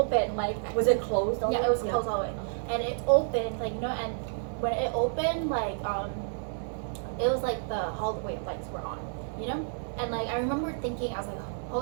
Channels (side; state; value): left; silent; 58 dB below the other